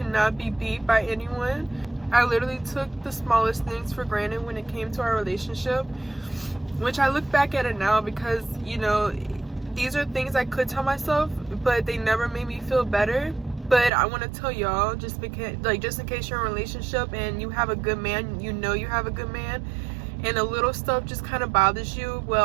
not be beat by anyone. I literally took the smallest things for granted when it came to our relationship, which I look back at it now because, you know, these are things I could tell myself, but they never made me feel better. But I want to tell y'all, just because, like, just in case you're in a relationship and you have a good man, you know you have a good man, and the little stuff just kind of bothers you,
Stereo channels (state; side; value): drops out; left; at 13.9 s